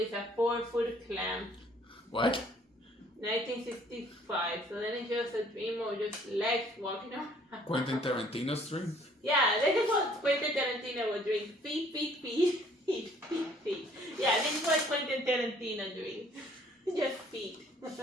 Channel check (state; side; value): normal; both; correlation 0.59